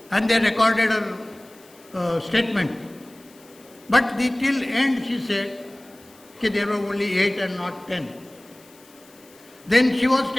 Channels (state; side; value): noise; left; hiss, 27 dB below the sound